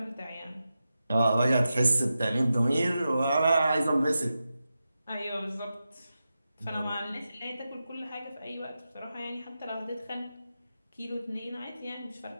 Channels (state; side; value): inverted; both; correlation -0.91